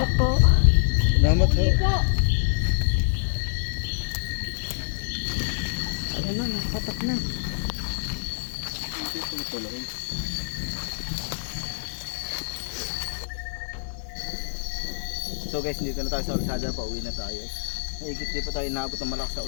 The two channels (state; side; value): silent; right; digital silence